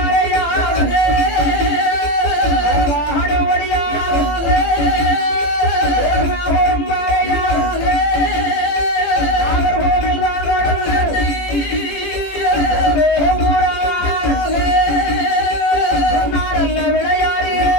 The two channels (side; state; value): right; late; 18 ms